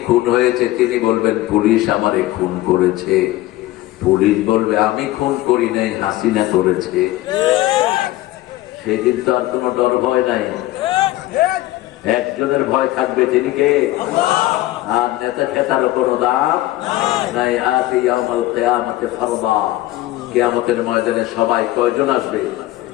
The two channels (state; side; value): quieter; right; 16.5 dB